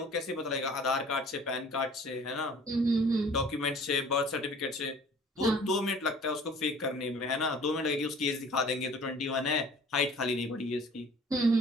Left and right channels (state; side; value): normal; both; correlation 0.50